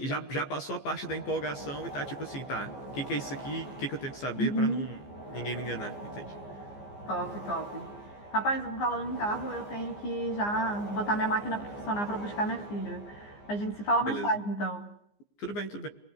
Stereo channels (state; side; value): late; right; 15 ms